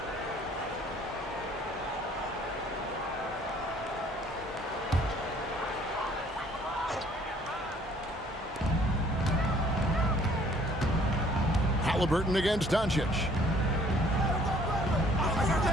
Halliburton against Doncic.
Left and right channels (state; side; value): normal; both; correlation 0.58